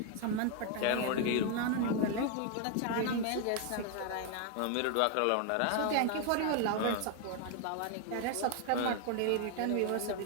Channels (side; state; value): both; different; correlation 0.01